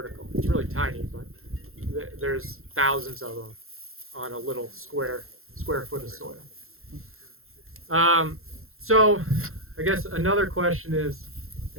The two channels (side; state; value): left; late; 0.62 ms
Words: It's really tiny, but there's thousands of them on a little square foot of soil. So I guess another question is,